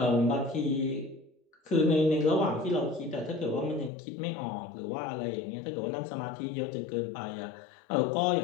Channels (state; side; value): drops out; right; at 3.9 s